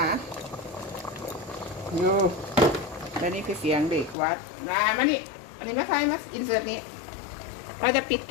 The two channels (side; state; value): right; drops out; at 4.2 s